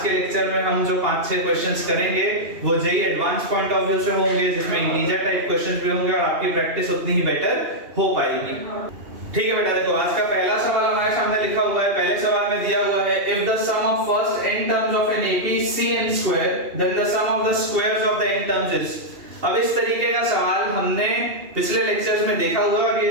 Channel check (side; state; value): left; late; 2.8 ms